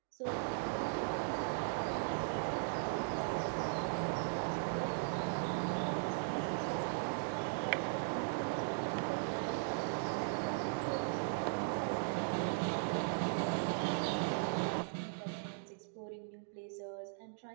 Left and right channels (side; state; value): left; silent; digital silence